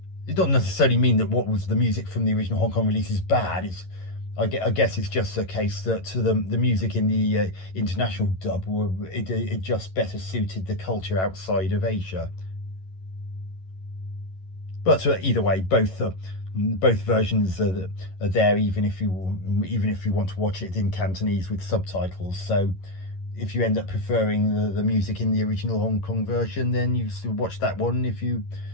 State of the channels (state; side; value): late; right; 11 ms